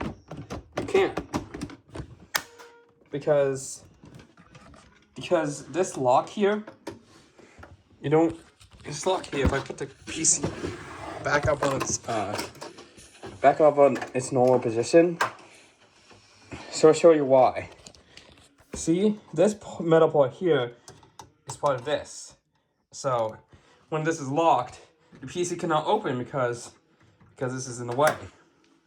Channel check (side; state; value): both; identical; correlation 1.00